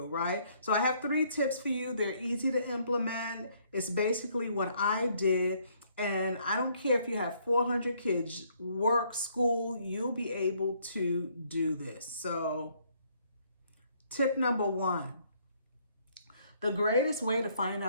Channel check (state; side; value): inverted; both; correlation -0.66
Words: right? So I have 3 tips for you. They're easy to implement. It's basically what I did. And I don't care if you have 400 kids, work, school, you'll be able to do this. So tip number 1, the greatest way to find